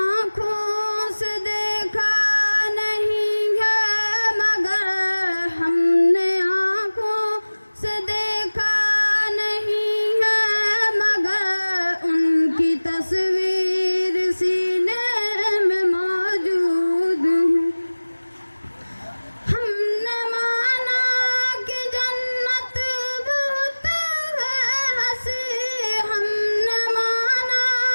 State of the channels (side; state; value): both; inverted; correlation -1.00